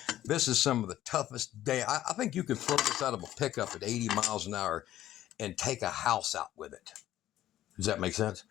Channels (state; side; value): quieter; right; 13.2 dB